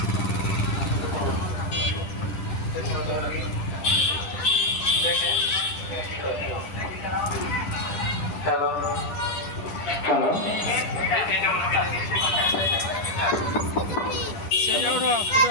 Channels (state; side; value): late; right; 11 ms